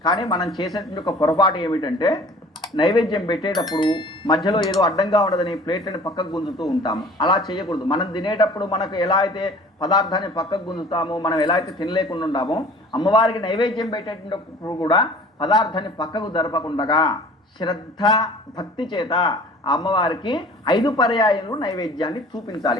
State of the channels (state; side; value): normal; both; correlation 0.47